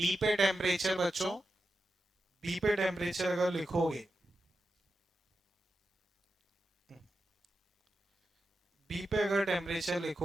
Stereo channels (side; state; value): both; normal; correlation 0.90